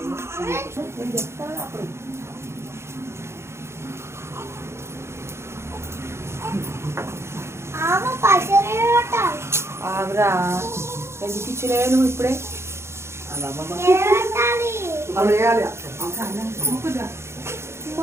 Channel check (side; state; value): left; late; 0.13 ms